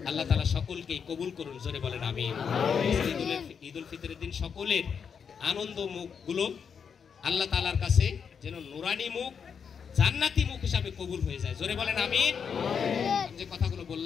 আল্লাহ তাআলা সকলকেই কবুল করুন, জোরে বলেন আমিন। ঈদুল ফিতরের দিন সকলের আনন্দ মুখগুলো আল্লাহ তাআলার কাছে যেন নুরানি মুখ, জান্নাতি মুখ হিসাবে কবুল হয়ে যায়, জোরে বলেন আমিন। যে কথাগুলো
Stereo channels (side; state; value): right; quieter; 6.7 dB